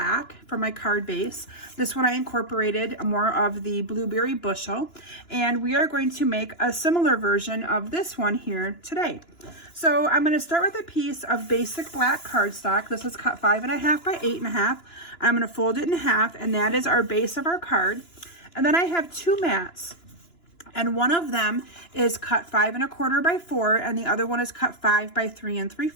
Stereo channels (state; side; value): late; right; 2.9 ms